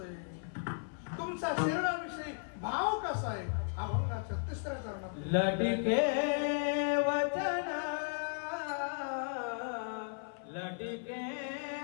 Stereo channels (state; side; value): silent; right; 54 dB below the other